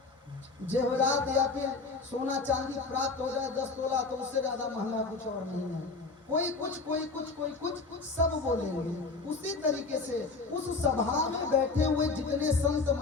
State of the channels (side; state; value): right; quieter; 3.9 dB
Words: जेवरात या फिर सोना चांदी प्राप्त हो जाए 10 तोला, तो उससे ज्यादा महंगा कुछ और नहीं है। कोई कुछ कोई कुछ सब बोलेंगे। उसी तरीके से उस सभा में बैठे हुए जितने संत